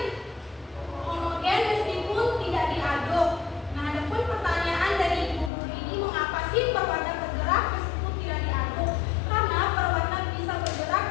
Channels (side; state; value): right; drops out; at 5.5 s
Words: homogen meskipun tidak diaduk. Nah, ada pun pertanyaan dari ibu guru ini, mengapa sih perwarna bergerak meskipun tidak diaduk? Karena perwarna bisa bergerak